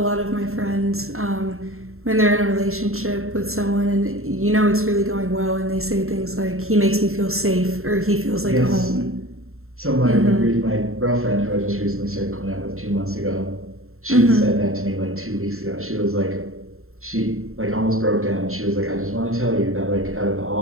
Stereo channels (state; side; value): late; left; 0.62 ms